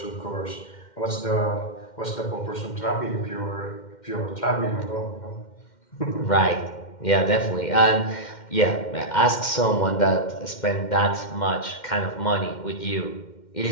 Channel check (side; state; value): right; late; 2.1 ms